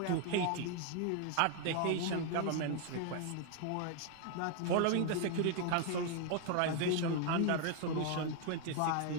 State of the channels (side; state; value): both; different; correlation 0.00